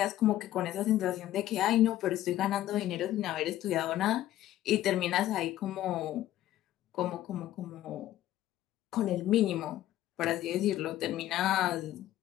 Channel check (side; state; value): right; quieter; 13.6 dB